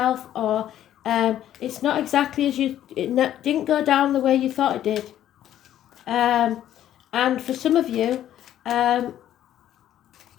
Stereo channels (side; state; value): right; quieter; 11.7 dB